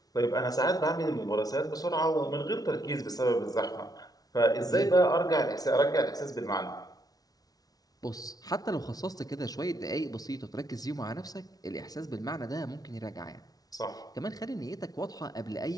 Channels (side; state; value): right; late; 0.18 ms